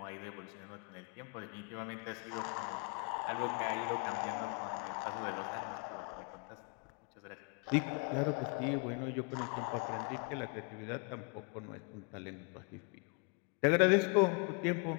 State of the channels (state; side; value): quieter; right; 32.5 dB